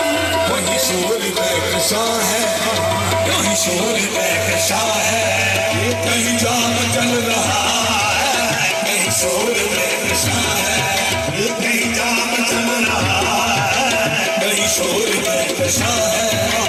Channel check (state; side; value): identical; both; correlation 1.00